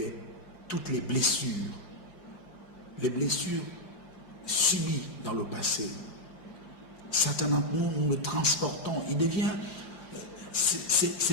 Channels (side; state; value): right; late; 5.7 ms